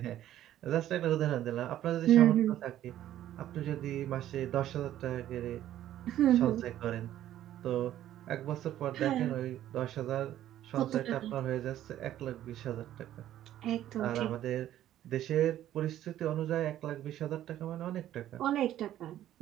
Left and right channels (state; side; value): quieter; left; 12.4 dB